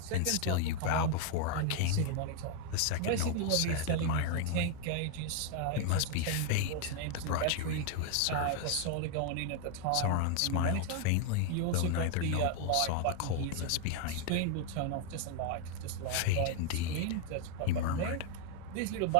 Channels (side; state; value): both; different; correlation 0.01